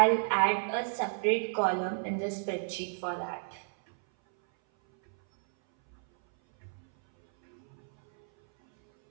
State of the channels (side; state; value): left; silent; 57 dB below the other